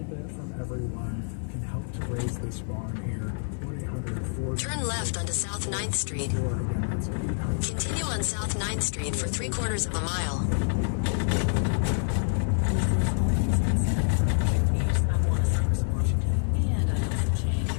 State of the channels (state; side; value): silent; right; digital silence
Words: bit from everyone can help to raise this barn here. 1-800-4... Turn left onto South 9th Street. Continue on South 9th Street for 3/4 of a mile.